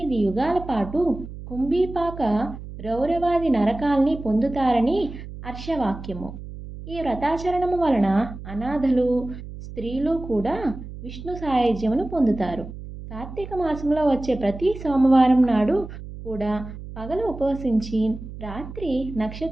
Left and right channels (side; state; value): right; noise; hum, 12 dB below the sound